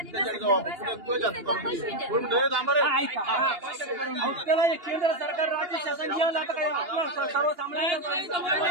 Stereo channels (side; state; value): left; late; 2.8 ms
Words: त्याला केंद्र सरकार राज्य शासन घेऊन जातं काय